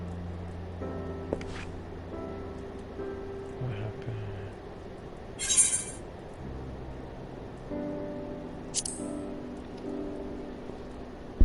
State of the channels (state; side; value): identical; both; correlation 1.00